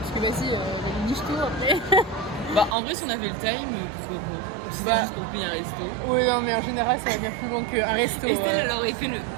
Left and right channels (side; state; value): left; drops out; at 2.8 s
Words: que vas-y, niche-toi après. Bah, en vrai, si on avait le time, pourquoi pas? Si c'était Bah. juste pour payer un resto. Oui non mais en général ça va bien plus loin qu'un resto. Estelle, elle aurait fait le